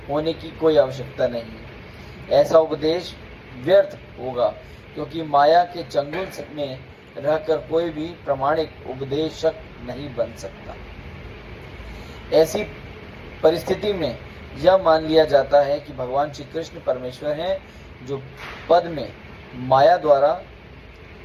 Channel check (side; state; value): both; identical; correlation 1.00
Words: होने की कोई आवश्यकता नहीं है। ऐसा उपदेश व्यर्थ होगा क्योंकि माया के चंगुल में रहकर कोई भी प्रामाणिक उपदेशक नहीं बन सकता। ऐसी परिस्थिति में यह मान लिया जाता है कि भगवान श्री कृष्ण परमेश्वर हैं, जो पद में माया द्वारा